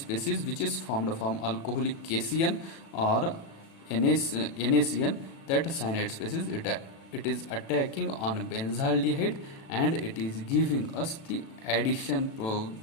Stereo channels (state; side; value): late; right; 36 ms